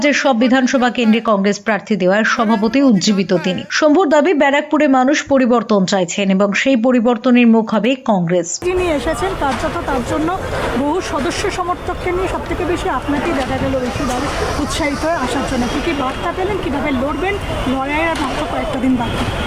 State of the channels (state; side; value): identical; both; correlation 1.00